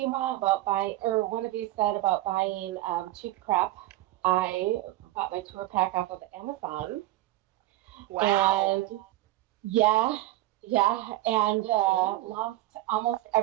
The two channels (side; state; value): left; quieter; 16.6 dB